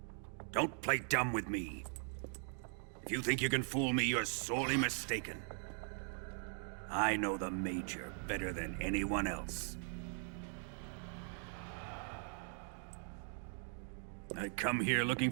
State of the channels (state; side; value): silent; left; 51 dB below the other